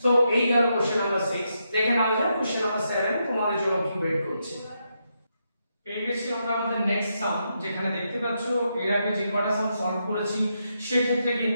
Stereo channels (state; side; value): inverted; both; correlation -0.82